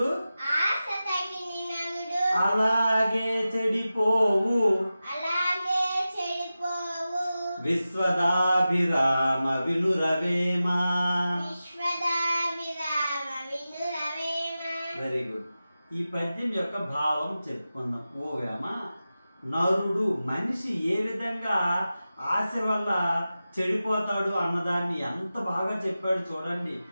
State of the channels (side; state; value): both; inverted; correlation -0.94